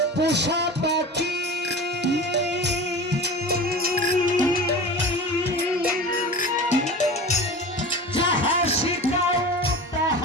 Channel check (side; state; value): both; normal; correlation 0.33